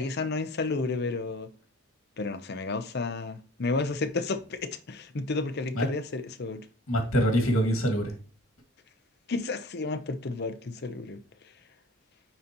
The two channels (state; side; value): normal; both; correlation 0.44